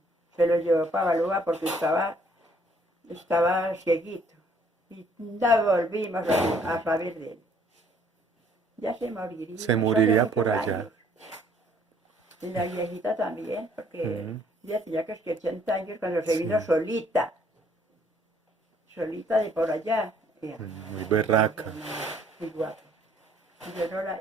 Se lo llevó para Balúa porque estaba cieguito. Y no volvimos a saber de él. Ya se moriría, Se eso hace moriría por muchos allá. años. Y la viejita también, porque Mm. ya tenía que 80 años cuando se vino Sí. solita de por allá. Muy berraca. Muy guapa.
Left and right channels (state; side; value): normal; both; correlation 0.62